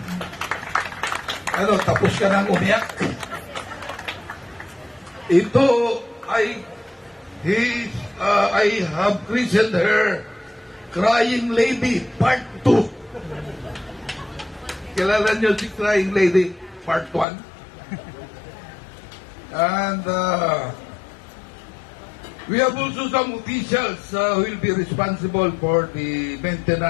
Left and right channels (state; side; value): drops out; right; at 17.2 s